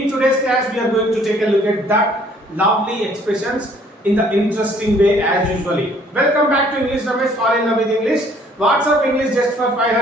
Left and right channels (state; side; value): normal; both; correlation 0.60